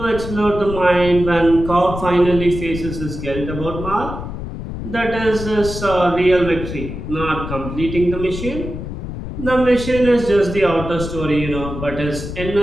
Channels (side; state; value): left; noise; rumble, 8 dB below the sound